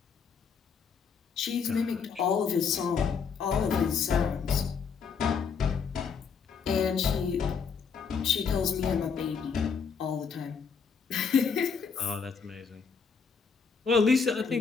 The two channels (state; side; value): quieter; right; 6.0 dB